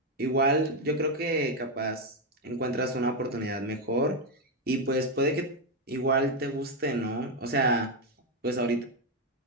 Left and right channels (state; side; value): normal; both; correlation 0.05